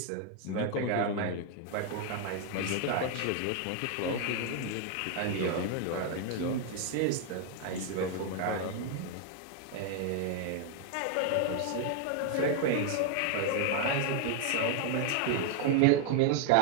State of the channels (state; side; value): different; both; correlation 0.00